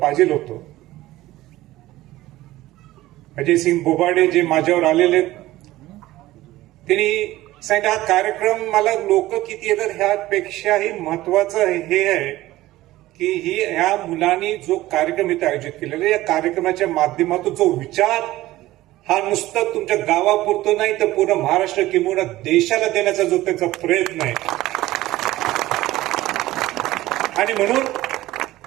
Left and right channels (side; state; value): left; quieter; 16.6 dB